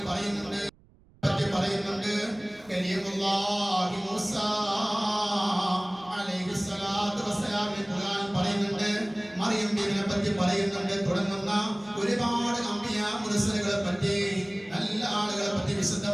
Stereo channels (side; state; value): right; noise; rumble, 28 dB below the sound